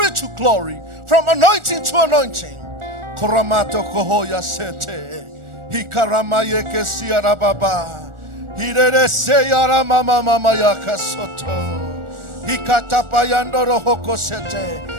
to glory, from anointing to anointing. Koramato kohoya sete. Hikaramaye kesiara baba. Hirere seyara mama mama yakasoto. Hikatapayandoro hoko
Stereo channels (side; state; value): left; late; 1.4 ms